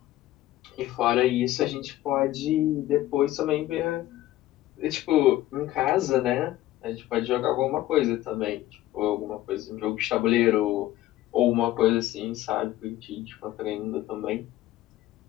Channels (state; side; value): quieter; right; 15.0 dB